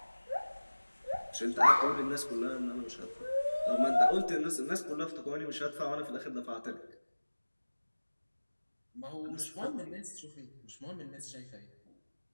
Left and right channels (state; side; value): inverted; both; correlation -1.00